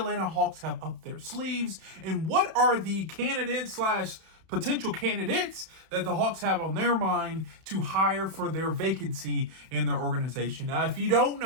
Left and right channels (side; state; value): left; late; 31 ms